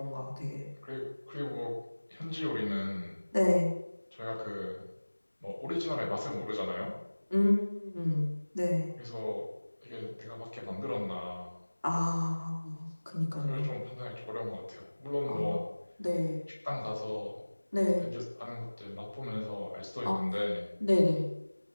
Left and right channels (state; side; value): inverted; both; correlation -1.00